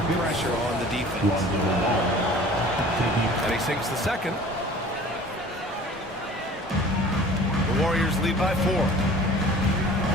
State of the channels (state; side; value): normal; both; correlation 0.45